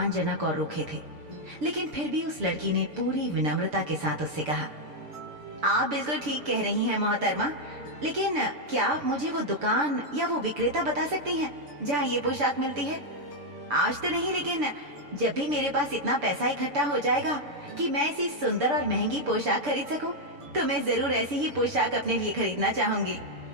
और रूखे थे, लेकिन फिर भी उस लड़की ने पूरी विनम्रता के साथ उससे कहा, आप बिल्कुल ठीक कह रही हैं मोहतरमा, लेकिन क्या आप मुझे वो दुकान या वो विक्रेता बता सकती हैं जहाँ ये पोशाक मिलती है? आज तो नहीं, लेकिन जब भी मेरे पास इतना पैसा इकट्ठा हो जाएगा कि मैं ऐसी सुंदर और महंगी पोशाक खरीद सकूं, तो मैं जरूर ऐसी ही पोशाक अपने लिए खरीदना चाहूंगी।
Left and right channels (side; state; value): left; late; 6.9 ms